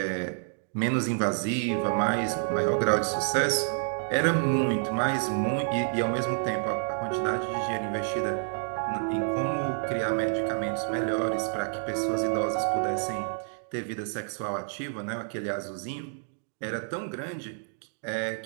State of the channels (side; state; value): left; silent; digital silence